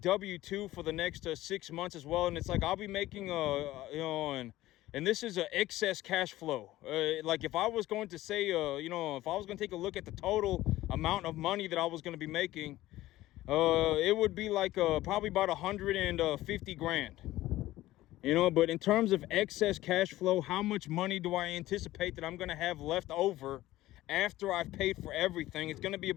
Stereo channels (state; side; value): quieter; right; 16.1 dB